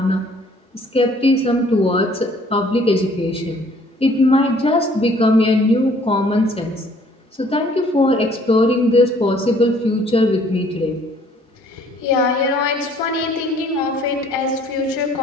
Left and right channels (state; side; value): normal; both; correlation 0.59